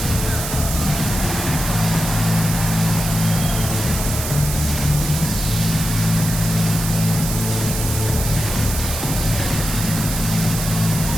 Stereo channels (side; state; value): right; noise; hiss, 5 dB below the sound